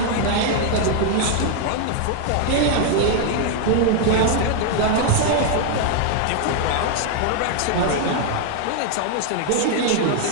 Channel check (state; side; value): different; both; correlation 0.00